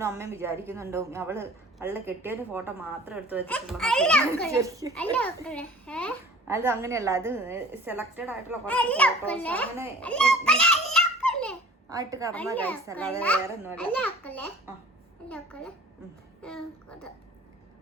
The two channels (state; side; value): normal; both; correlation 0.46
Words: അമ്മയും വിചാരിക്കുന്നുണ്ടോ അവള് കെട്ടിയതിന്റെ ഫോട്ടോ മാത്രം എടുത്തു വെച്ചിട്ടുള്ള. അത് അങ്ങനെയല്ല, അത് സെലക്റ്റഡ് ആയിട്ടുള്ള കുറച്ച് ഫോട്ടോസ് അങ്ങനെ ആയിട്ട് കടന്ന കഴിച്ച, അല്ലാതെ വേറെ ഒന്നുമല്ല.